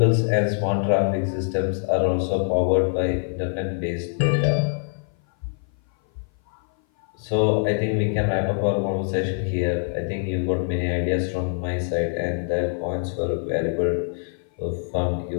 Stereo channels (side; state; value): right; silent; 57 dB below the other